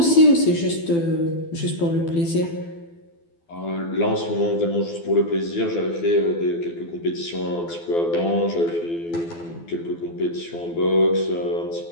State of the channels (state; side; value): late; right; 12 ms